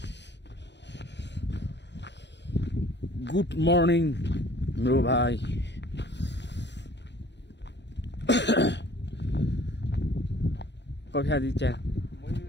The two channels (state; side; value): late; right; 0.51 ms